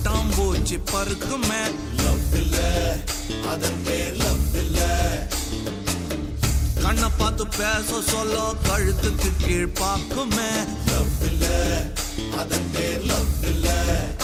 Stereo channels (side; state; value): both; identical; correlation 1.00